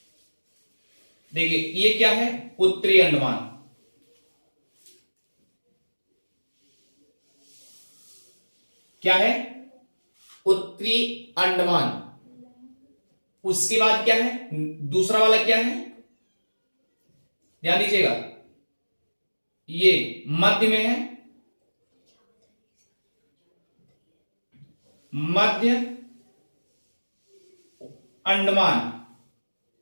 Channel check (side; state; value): both; inverted; correlation -1.00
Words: देखिए ये क्या है? उत्तरी अंडमान। क्या है? उत्तरी अंडमान। उसके बाद क्या है? दूसरा वाला क्या है? ध्यान दीजिएगा, ये मध्य में है, मध्य अंडमान।